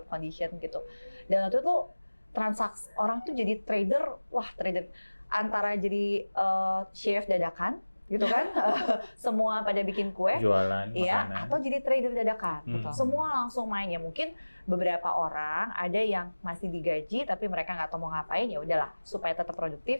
condition gitu. Dan waktu itu transaksi orang tuh jadi trader, trader antara jadi chef dadakan gitu kan, semua pada bikin kue, jualan iya, makanan, atau jadi trader dadakan. Semua langsung main ya. Mungkin beberapa orang ada yang masih digaji tapi mereka nggak tahu mau ngapain, ya udahlah supaya tetap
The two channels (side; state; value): both; inverted; correlation -1.00